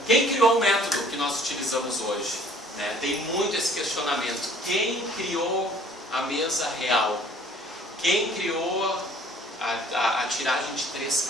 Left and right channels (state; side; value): normal; both; correlation 0.54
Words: Quem criou o método que nós utilizamos hoje? Né? Tem muito esse questionamento. Quem criou a mesa real? Quem criou a tiragem de 3